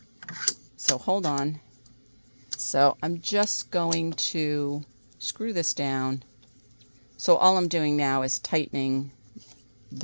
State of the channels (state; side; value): inverted; both; correlation -1.00